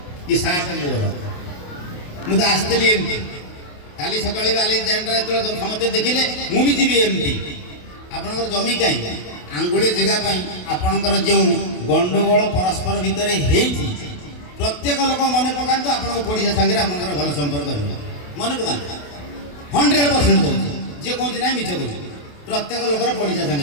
ଏ ସାପ ମୋର। ମୁଁ ତ ଆସିଥିଲି ଏମିତି କାଲି ସକାଳେ ଆଲେକ୍ସାଣ୍ଡର ଯେତେବେଳେ ସମସ୍ତେ ଦେଖିଲେ ମୁଁ ବି ଯିବି ଏମିତି। ଆପଣଙ୍କର ଜମି କାହିଁ ଆଙ୍ଗୁଳି ଜାଗା ପାଇଁ ଆପଣଙ୍କର ଯେଉଁ ଗଣ୍ଡଗୋଳ ପରସ୍ପର ଭିତରେ ହେଇଛି ପ୍ରତ୍ୟେକ ଲୋକ ମନେ ପକାନ୍ତୁ। ଆପଣଙ୍କ ପଡ଼ିଶା ସାଙ୍ଗରେ ଆପଣଙ୍କର ଭଲ ସମ୍ପର୍କ ରହିବ, ମନେ ପକାନ୍ତୁ। 100% କହୁଛି, ଯିଏ କହୁଛି ନାହିଁ ମିଛ କହୁଛି। ପ୍ରତ୍ୟେକ ଲୋକର ପଡ଼ିଶା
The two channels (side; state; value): right; late; 28 ms